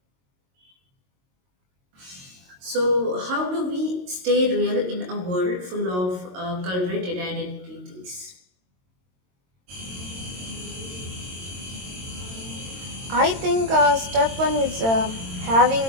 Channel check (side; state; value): left; late; 22 ms